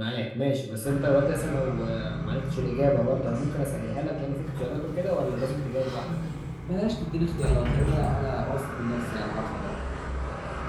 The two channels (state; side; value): identical; both; correlation 1.00